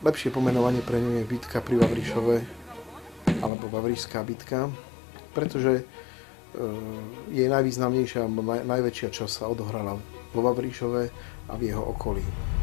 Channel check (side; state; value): right; drops out; at 3.5 s